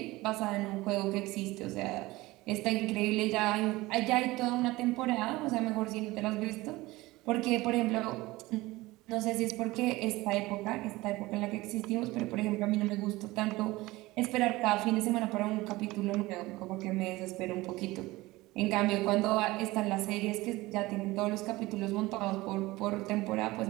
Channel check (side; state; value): left; quieter; 19.8 dB